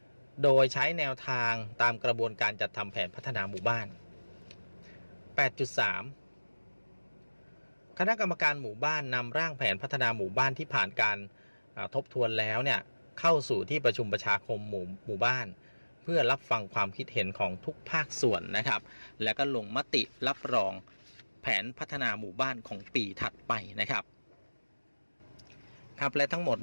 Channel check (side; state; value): both; inverted; correlation -1.00